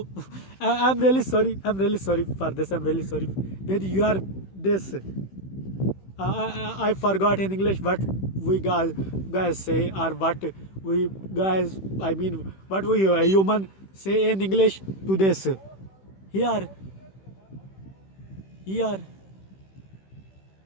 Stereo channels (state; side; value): late; right; 16 ms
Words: I'm really sorry. I'm really sorry for this. I'm really sorry. With your this. I forgot in English what we guys say or what we guys, I mean, what we human say in English to this. Here, here.